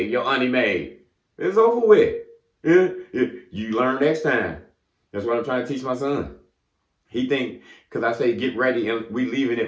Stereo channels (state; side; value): identical; both; correlation 1.00